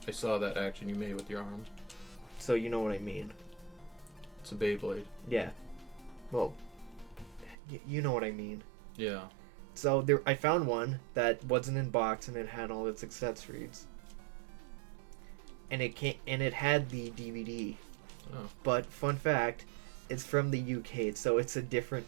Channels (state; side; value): drops out; left; at 7.6 s